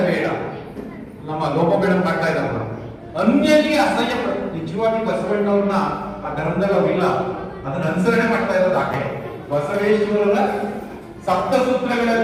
ನಮ್ಮ ಲೋಪಬೇಡ ಮಾಡ್ತಾ ಇದ್ದಾರಲ್ಲ, ಅನ್ಯರಿಗೆ ಅಸಹ್ಯ ಪಡ. ನಿಜವಾಗಿ ಬಸವಣ್ಣವ್ರನ್ನ ಆ ಧರ್ಮದಲ್ಲಿ ಅವ್ರಿಲ್ಲ, ಅದನ್ನ ಅನುಸರಣೆ ಮಾಡ್ತಾ ಇರೋದು ಆಕೆ. ಬಸವೇಶ್ವರರ ಸಪ್ತ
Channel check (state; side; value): identical; both; correlation 1.00